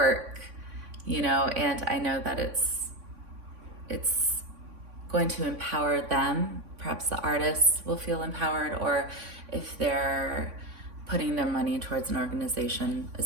and I know that it's going to empower them. Perhaps the artists will feel empowered, or if they're putting their money towards an organization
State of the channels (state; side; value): late; left; 3.6 ms